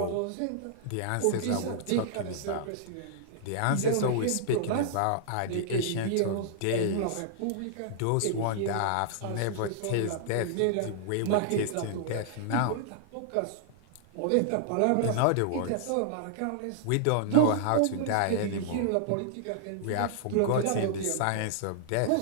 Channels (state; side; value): different; both; correlation -0.01